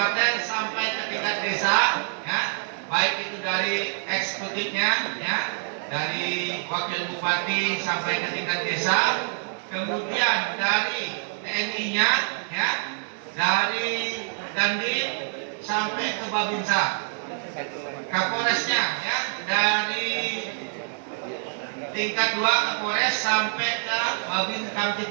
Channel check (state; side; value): silent; left; 61 dB below the other